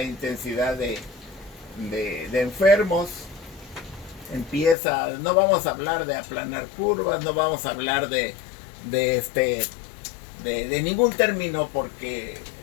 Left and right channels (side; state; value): right; drops out; at 4.8 s